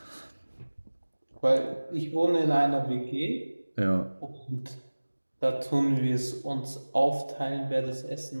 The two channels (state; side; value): inverted; both; correlation -1.00